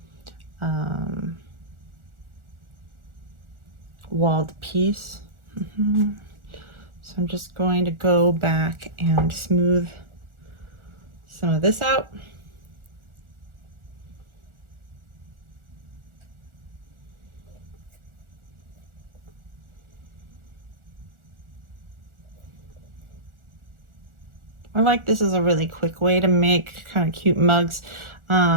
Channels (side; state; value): left; late; 1.4 ms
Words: walled piece. So I'm just going to go back and smooth some of this out. I like this as a really quick way to make kind of cute mugs.